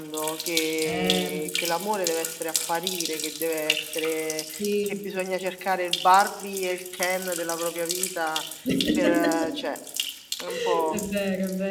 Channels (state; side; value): identical; both; correlation 1.00